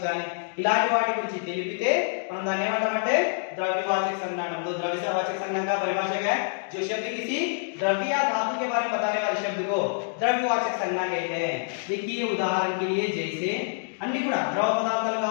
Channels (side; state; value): right; silent; digital silence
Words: కానీ, ఇలాంటి వాటి గురించి తెలిపితే మనం దాన్ని ఏమంటామంటే द्रव्यवाचक संज्ञा अंटाम. तो द्रव्यवाचक संज्ञा का परिभाषा क्या है? जो शब्द किसी द्रव्य या धातु के बारे में बताने वाले शब्द को द्रव्यवाचक संज्ञा कहते हैं. देखिए उदाहरण के लिए जैसे అన్ని కూడా ద్రవ పదార్థాలు